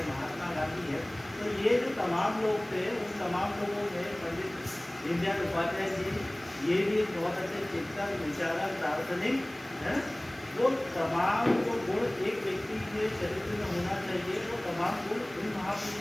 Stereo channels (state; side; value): noise; right; hiss, 24 dB below the sound